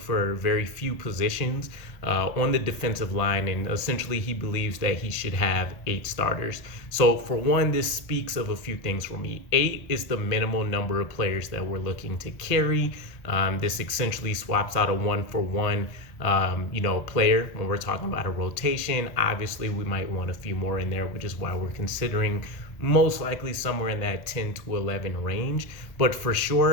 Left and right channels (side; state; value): right; late; 1.8 ms